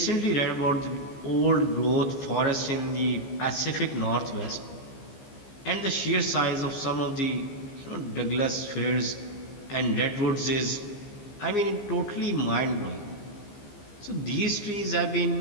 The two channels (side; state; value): right; late; 15 ms